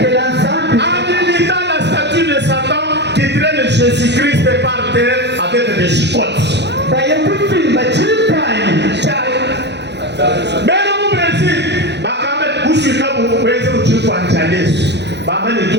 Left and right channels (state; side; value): late; left; 0.50 ms